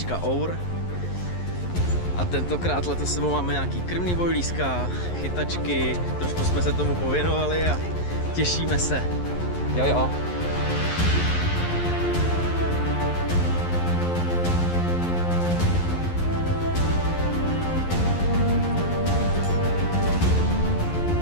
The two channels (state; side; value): late; right; 11 ms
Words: Our. A tentokrát letos sebou máme nějaký krmný bojlíska, chytačky, trošku jsme se tomu pověnovali a těšíme se. Jo.